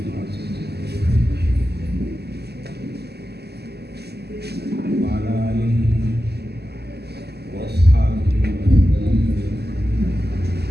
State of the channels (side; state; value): left; late; 0.47 ms